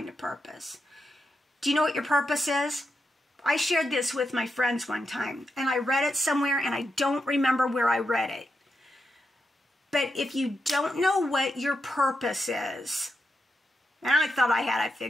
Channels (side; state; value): both; normal; correlation 0.85